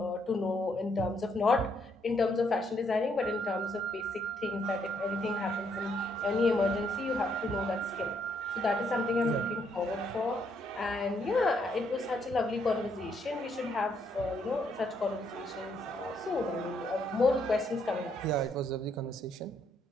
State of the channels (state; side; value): normal; both; correlation 0.73